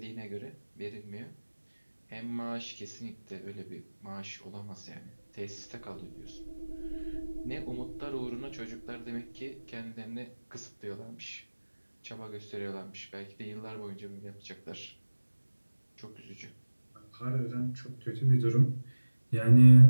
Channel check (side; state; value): both; inverted; correlation -1.00